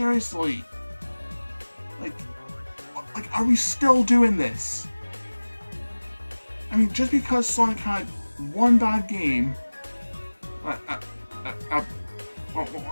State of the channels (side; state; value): both; inverted; correlation -1.00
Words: like, are we still doing this? I mean, just because Sonic had one bad game, a